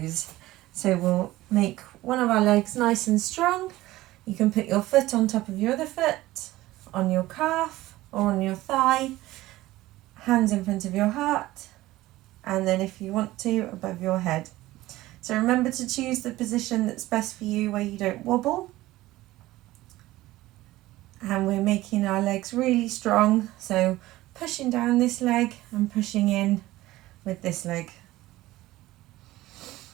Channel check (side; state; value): left; quieter; 17.1 dB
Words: So we'll make one of our legs nice and strong. You can put your foot on top of your other foot, on your calf or on your thigh. Hands in front of your heart, and then if you want to, above your head. So remember to choose the position that's best for you where you don't wobble. And we're making our legs really strong, so pushing down this leg and pushing in with this leg.